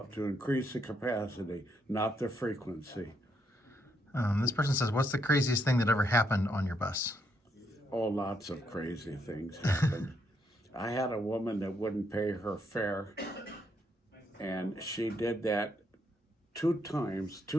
to increase the capacity, not the frequency. This person says, what's the craziest thing that ever happened on your bus? Oh, lots of crazy things happened. I had a woman that wouldn't pay her fare, and she did that 2 times,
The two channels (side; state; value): both; normal; correlation 0.76